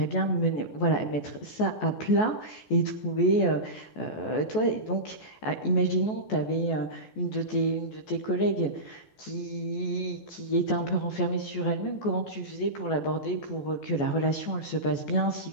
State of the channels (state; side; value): late; right; 14 ms